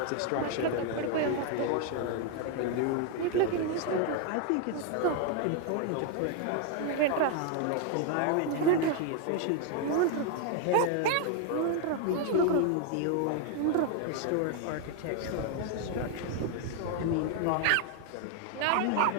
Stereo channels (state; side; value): different; both; correlation 0.01